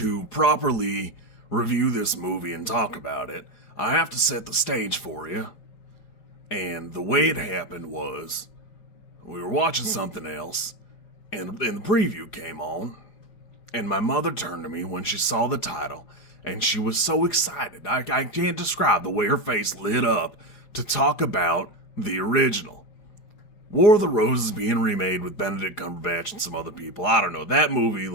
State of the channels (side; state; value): right; late; 4.9 ms